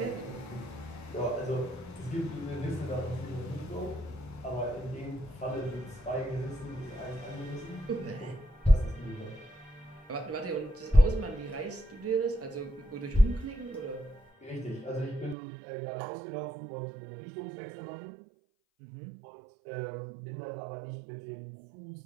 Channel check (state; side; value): drops out; left; at 15.4 s